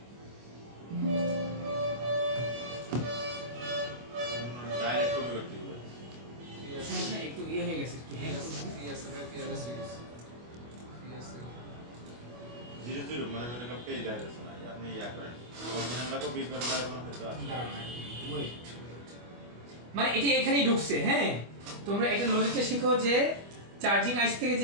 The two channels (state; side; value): late; left; 25 ms